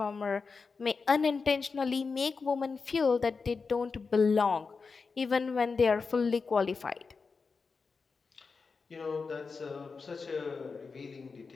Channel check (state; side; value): quieter; right; 4.8 dB